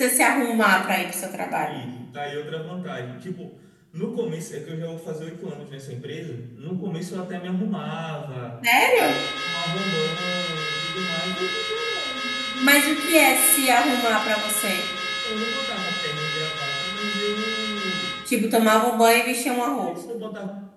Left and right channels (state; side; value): identical; both; correlation 1.00